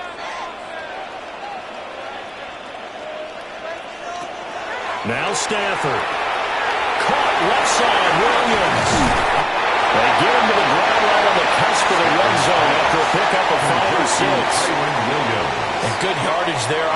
Now Stafford. Caught left side, Williams. They get him to the ground right on the cusp of the red zone after a pickup of 5 or 6. And good yardage there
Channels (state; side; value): identical; both; correlation 1.00